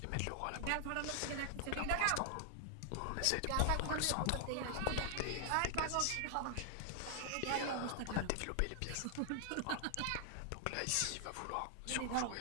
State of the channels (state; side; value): different; both; correlation 0.00